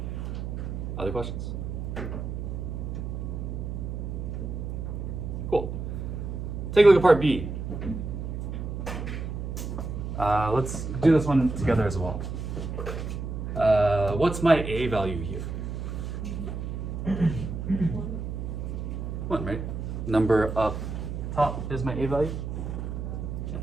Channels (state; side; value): noise; right; hum, 5 dB below the sound